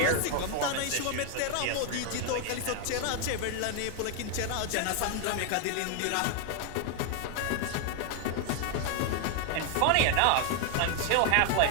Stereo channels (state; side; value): different; both; correlation 0.00